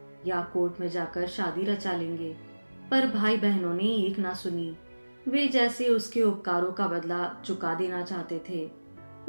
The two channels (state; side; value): inverted; both; correlation -1.00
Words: या कोर्ट में जाकर शादी रचा लेंगे, पर भाई बहनों ने एक ना सुनी। वे जैसे उसके उपकारों का बदला चुका देना चाहते थे।